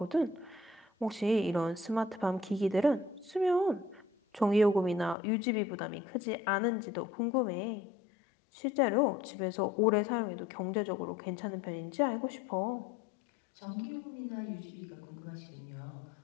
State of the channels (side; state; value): right; drops out; at 5.2 s